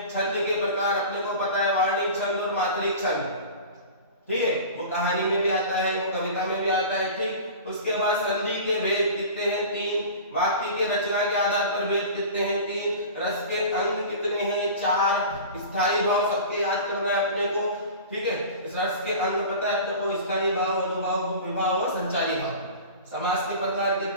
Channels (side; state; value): both; inverted; correlation -0.36